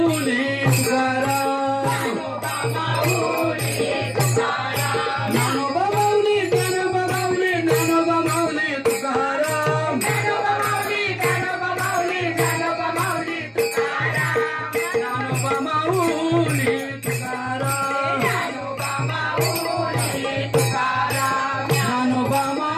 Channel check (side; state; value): both; identical; correlation 1.00